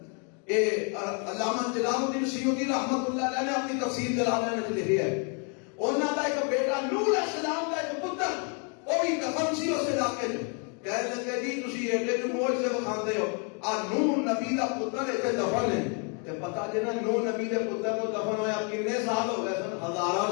علامہ جلال الدین سیوطی رحمت اللہ علیہ نے اپنی تفسیر جلالین میں لکھی ہے، انہوں کا ایک بیٹا نوح علیہ السلام کا ایک پتر وہ بھی دفن سی اس علاقے میں، کہنے لگے جی تسی ایڈے جو معجزے بکھاندے ہو، آ نوح نبی دا پتر ایتھے دفن ہے تے پتہ جے نا نوح نبی دے پتر کو دفن ہویا کتنے سال ہو گئے سن؟ ہزاراں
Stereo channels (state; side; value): quieter; right; 38.2 dB